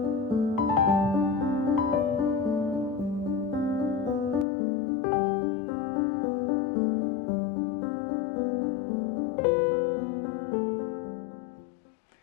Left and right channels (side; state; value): right; drops out; at 4.5 s